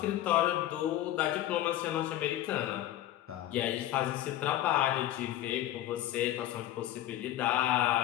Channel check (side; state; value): right; quieter; 13.5 dB